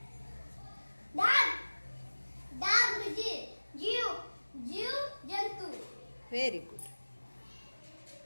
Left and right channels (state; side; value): inverted; both; correlation -1.00